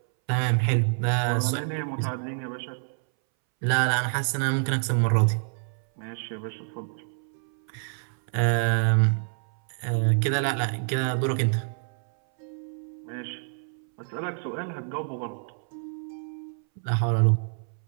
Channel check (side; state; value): left; silent; 60 dB below the other